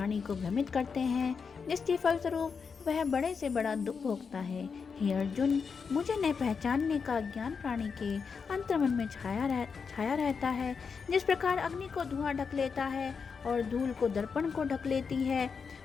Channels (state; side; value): quieter; right; 5.7 dB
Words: को भ्रमित करते हैं, जिसके फलस्वरूप वह बड़े से बड़ा दुख भोगता है। हे अर्जुन, मुझे न पहचानने का ज्ञान प्राणी के अंतर्मन में छाया रहता है। जिस प्रकार अग्नि को धुआं ढक लेता है और धूल को दर्पण को ढक लेती है,